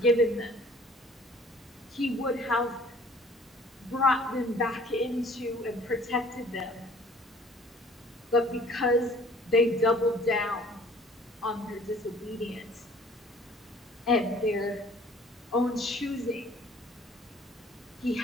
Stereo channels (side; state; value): both; normal; correlation 0.53